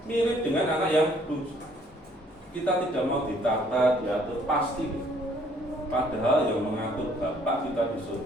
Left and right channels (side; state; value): both; normal; correlation 0.62